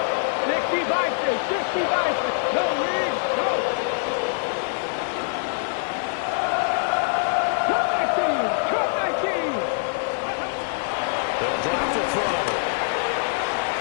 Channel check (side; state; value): right; silent; digital silence